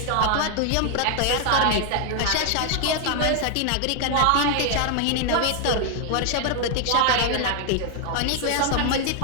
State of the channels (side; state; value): both; different; correlation 0.00